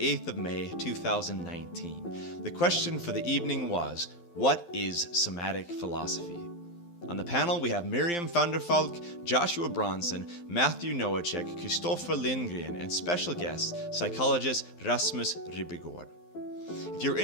of May, 2019. The question for the evening was, what is Somatic Philosophy? On the panel we have Miriam van der Valk, Joshua Bronson, Matthew Nowachek, Christoffer Lindgren, and special guest, psychologist Rasmus Ribbegårdh. If you're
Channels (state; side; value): late; right; 12 ms